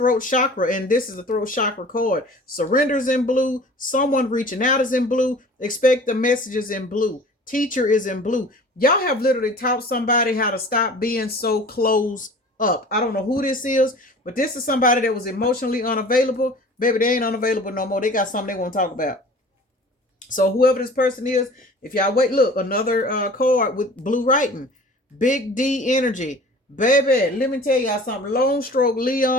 chakra, and this is the throat chakra card. Surrenders in blue. Someone reaching out is in blue. Expect the messages in blue. Teacher is in blue. Y'all have literally taught somebody how to stop being so closed up. I don't know who this is, but this is somebody that was emotionally unavailable. Baby, they ain't unavailable no more. They got something they want to talk about. So whoever this person is, if y'all wait, look, another card with blue writing. Big D energy. Baby, let me tell y'all something. Lone Stroke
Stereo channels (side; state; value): both; normal; correlation 0.44